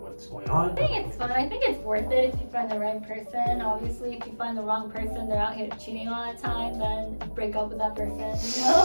going on. I think it's fun. I think it's worth it if you find the right person. Obviously, if you find the wrong person, they're out here cheating all the time, then break up with that person, you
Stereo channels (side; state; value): both; inverted; correlation -1.00